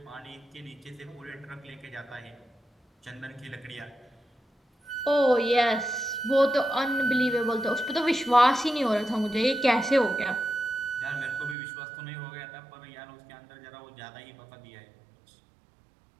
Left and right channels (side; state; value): left; drops out; at 11.6 s